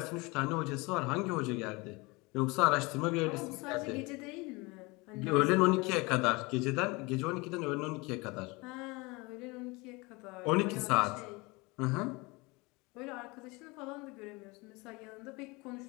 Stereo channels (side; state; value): right; quieter; 25.2 dB